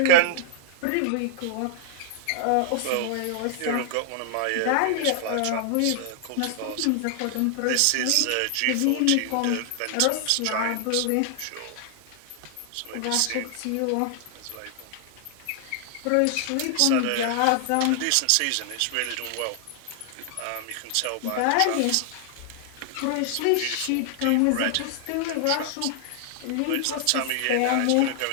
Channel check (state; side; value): different; both; correlation 0.00